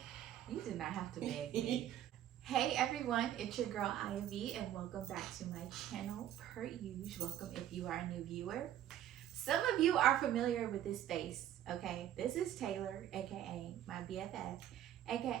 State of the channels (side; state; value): left; quieter; 11.6 dB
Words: You did not have to beg me. Hey everyone, it's your girl Ivy and welcome back to my channel. Per usual, welcome if you are a new viewer. Some of you are familiar with this face, okay? This is Taylor, aka my BFF,